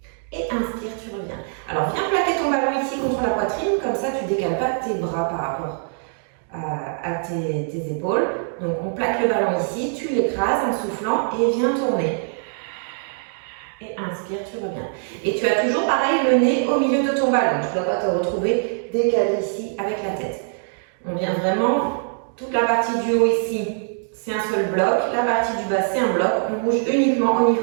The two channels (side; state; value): left; silent; digital silence